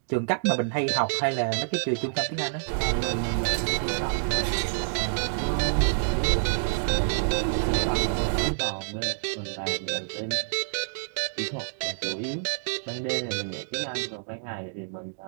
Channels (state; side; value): silent; left; digital silence